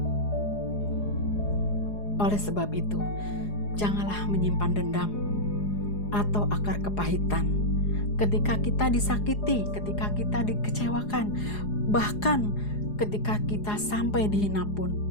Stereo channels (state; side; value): late; right; 4.8 ms